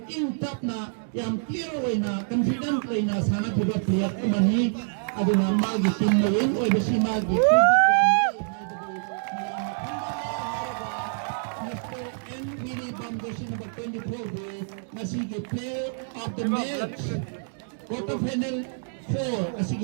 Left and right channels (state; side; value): silent; left; digital silence